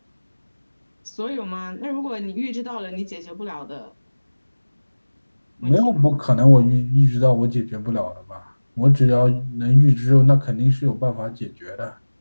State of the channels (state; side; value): inverted; both; correlation -1.00